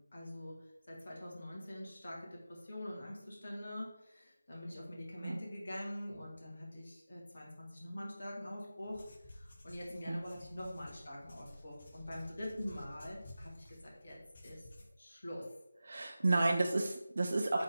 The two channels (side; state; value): both; inverted; correlation -0.95